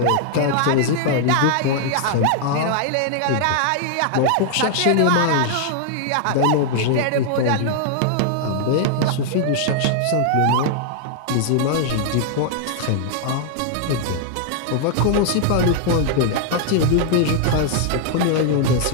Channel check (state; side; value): different; both; correlation 0.00